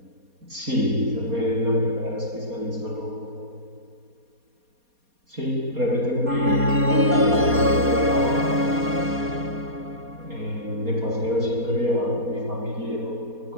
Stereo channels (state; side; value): late; left; 4.2 ms